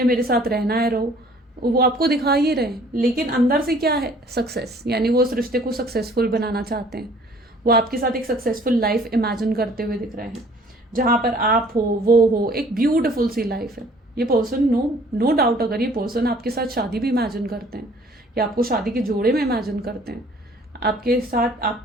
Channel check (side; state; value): both; normal; correlation 0.55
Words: मेरे साथ रहना है रहो, वो आपको दिखा ही रहे हैं। लेकिन अंदर से क्या है? सक्सेस। यानी वो इस रिश्ते को सक्सेसफुल बनाना चाहते हैं। वो आपके साथ एक सक्सेसफुल लाइफ इमेजिन करते हुए दिख रहे हैं, जहां पर आप हो, वो हो, एक ब्यूटिफुल सी लाइफ है। ये पर्सन नो डाउट, अगर ये पर्सन आपके साथ शादी भी इमेजिन करते हैं या आपको शादी के जोड़े में इमेजिन करते हैं आपके साथ